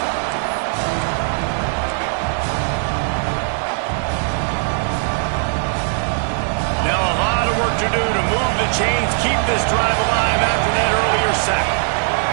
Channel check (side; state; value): left; silent; 60 dB below the other